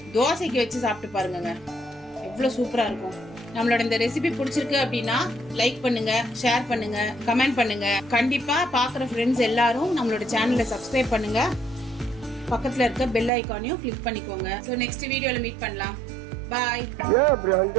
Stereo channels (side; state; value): left; drops out; at 13.3 s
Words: தோசைக்கு வச்சு சாப்பிட்டு பாருங்க, எவ்வளோ சூப்பராக இருக்கும். நம்மளோட இந்த ரெசிபி பிடிச்சிருக்கு அப்படின்னா லைக் பண்ணுங்க, ஷேர் பண்ணுங்க, கமெண்ட் பண்ணுங்க. கண்டிப்பா பார்க்குற ஃப்ரெண்ட்ஸ் எல்லாரும் நம்மளோட சேனலை சப்ஸ்கிரைப் பண்ணுங்க. பக்கத்தில் இருக்க பெல் ஐக்கானையும் கிளிக் பண்ணிக்கோங்க. ஸோ நெக்ஸ்ட் வீடியோவில் மீட் பண்ணலாம். பாய்.